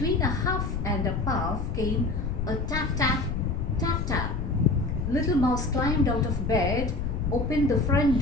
a huff and a puff, came a tap tap, tap tap. Little Mouse climbed out of bed, opened the front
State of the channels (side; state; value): left; noise; rumble, 3 dB below the sound